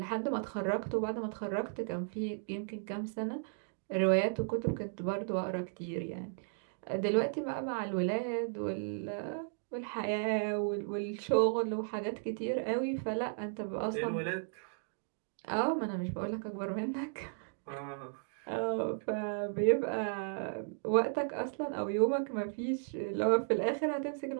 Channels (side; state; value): left; silent; digital silence